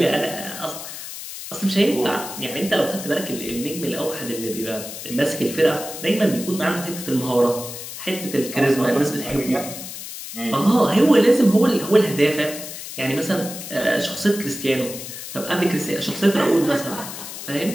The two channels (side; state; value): left; noise; hiss, 10 dB below the sound